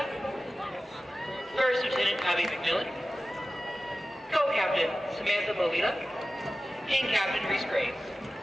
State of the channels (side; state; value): both; normal; correlation 0.96